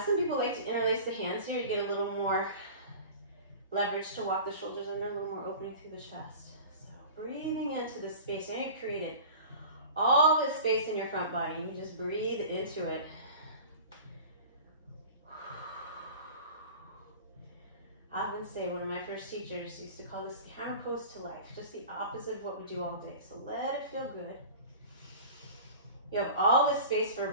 people like to interlace the hands here. You get a little more leverage to walk the shoulders under, a little more opening through the chest. So breathing into the space. Now you've created all this space in your front body, and you just breathe into it. I often say, one of my first teachers used to call this the hammer pose to life, just the opposite of what we do all day. So let it feel good. You have all this space for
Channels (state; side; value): inverted; both; correlation -0.38